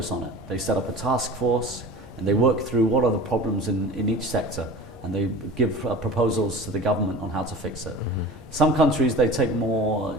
on it. They set up a task force and they work through what are the problems in each sector, and they give proposals to the government on how to fix it. Some countries, they take more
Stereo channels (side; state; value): both; normal; correlation 0.37